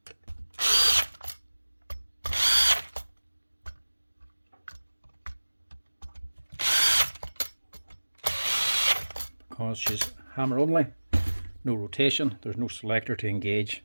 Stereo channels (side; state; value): both; inverted; correlation -1.00